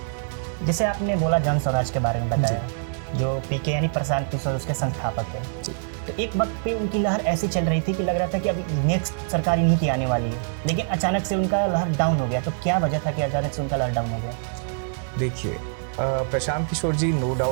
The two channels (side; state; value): left; silent; digital silence